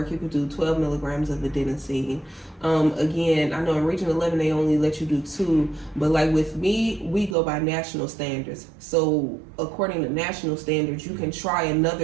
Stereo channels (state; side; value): drops out; left; at 7.4 s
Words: you could do 12 milligrams of adenosine. Again, I know in Region 11 they only let you do 2, but like with me, we go by national standards. So according to national standards, you can try